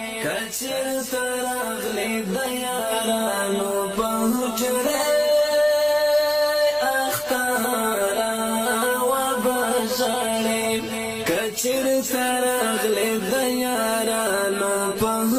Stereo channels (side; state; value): left; noise; hum, 29 dB below the sound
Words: کچر ترغلې د یارانو په حجره اختارا و بشړې کچر ترغلې د یارانو په